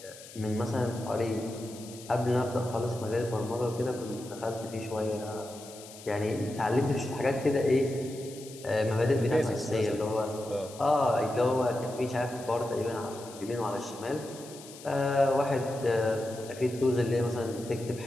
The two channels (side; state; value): left; noise; hiss, 17 dB below the sound